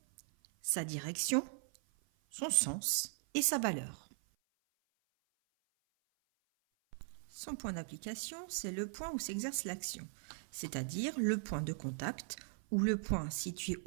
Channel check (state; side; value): silent; left; 52 dB below the other